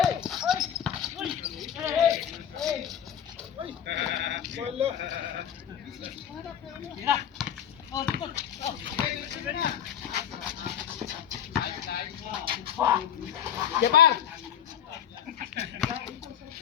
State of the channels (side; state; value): right; quieter; 9.3 dB